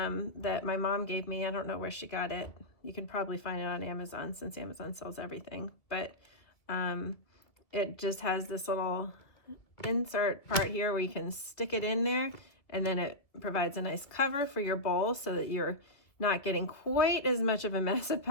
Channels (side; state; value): right; late; 2.4 ms